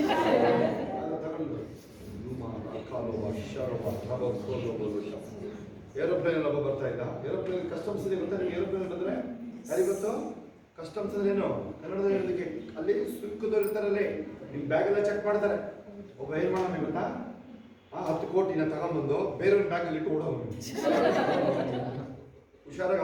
ತಗೊಂಡು ಏರೋಪ್ಲೇನ್ ಒಬ್ಬ ಬರ್ತಾ ಇದ್ದ. ಏರೋಪ್ಲೇನ್ ಕಸ್ಟಮ್ಸ್ ಇದೆ ಗೊತ್ತಾ ನಿಮ್ಗೆ? ಏರೋಪ್ಲೇನ್ ಬಂದ್ರೆ ಯಾರಿಗೆ ಗೊತ್ತು ಕಸ್ಟಮ್ಸ್ ಅಂದ್ರೆ ಏನು ಕನ್ನಡದಲ್ಲಿ ಹೇಳೋದಕ್ಕೆ? ಅಲ್ಲಿ ಸುಂಕದವ್ರು ಇರ್ತಾರಲ್ಲಿ, ನಿಮ್ ಬ್ಯಾಗ್ ಎಲ್ಲ ಚೆಕ್ ಮಾಡ್ತಾರೆ. ಒಬ್ಬ ಏನ್ ಮಾಡೋಣ ಗೊತ್ತಾ, 10 ಕೋಟಿನ ತಗೊಂಡ್ಬಂದು ಬೇರೆಯವ್ರ ಬ್ಯಾಗಲ್ಲಿ ಇಟ್ಟು ಓಡೋನು. ಹುಷಾರಾಗಿ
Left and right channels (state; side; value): identical; both; correlation 1.00